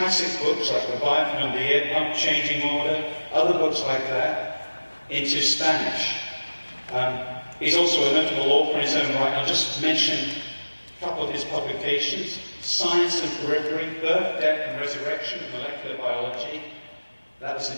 books like Leviathan and the Air Pump Changing Order, other books like that, into Spanish. He's also a notable author in his own right. I'll just mention a couple of his publications: Science and Periphery, Birth, Death and Resurrection of Molecular Biology. That was in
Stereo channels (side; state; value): both; inverted; correlation -1.00